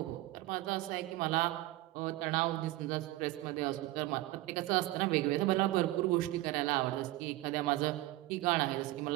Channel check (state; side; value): quieter; left; 17.6 dB